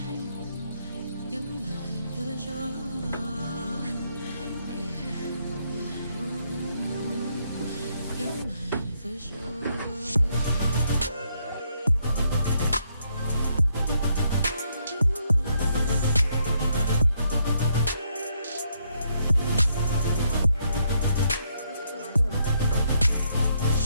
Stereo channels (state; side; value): inverted; both; correlation -0.74